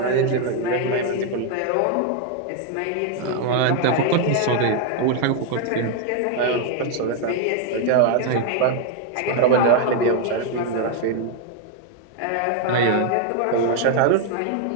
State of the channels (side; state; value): both; different; correlation 0.01